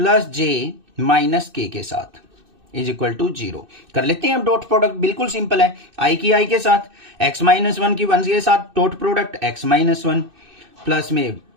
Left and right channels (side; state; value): left; late; 2.6 ms